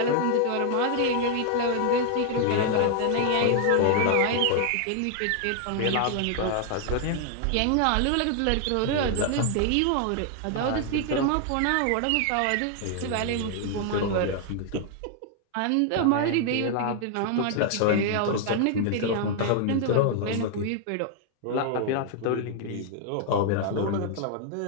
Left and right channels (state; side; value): different; both; correlation 0.00